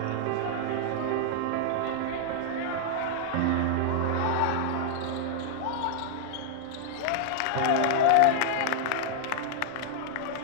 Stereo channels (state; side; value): different; both; correlation -0.01